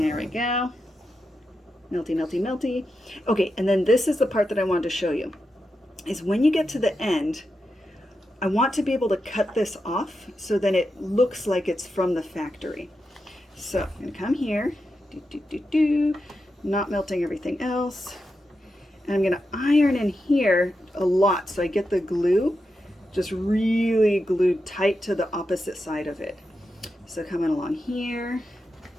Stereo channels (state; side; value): normal; both; correlation 0.88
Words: we go. Melty, melty, melty. Okay, and then this is the part that I wanted to show you. Is when you get to the end, I want to be able to cut this off so then it looks like it's from the factory. So I'm going to come here, not melting everything else. And I'm going to iron in here a lot so I get the glue just really glued tight to the opposite side of it. So coming along here,